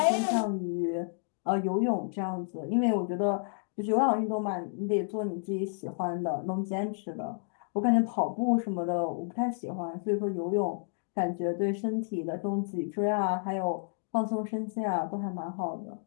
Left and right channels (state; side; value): silent; right; digital silence